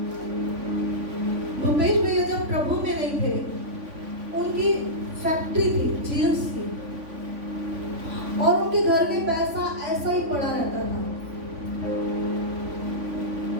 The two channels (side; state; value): left; late; 3.5 ms